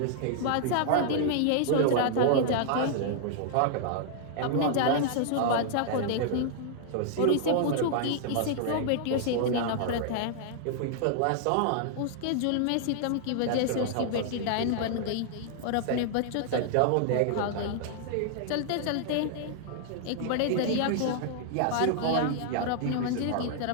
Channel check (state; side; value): different; both; correlation -0.01